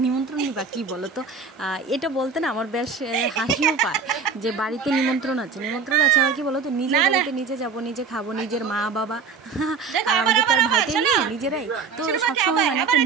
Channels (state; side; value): quieter; left; 5.2 dB